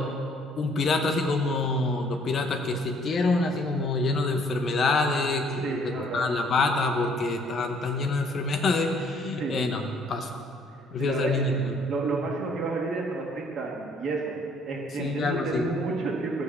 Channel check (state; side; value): normal; both; correlation 0.62